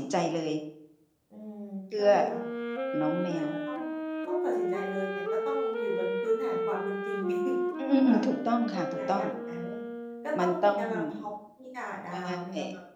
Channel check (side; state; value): both; identical; correlation 1.00